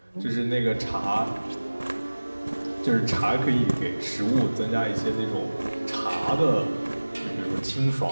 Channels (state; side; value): inverted; both; correlation -1.00